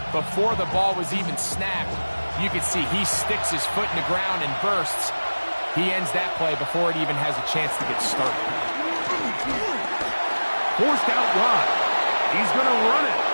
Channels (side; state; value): both; inverted; correlation -1.00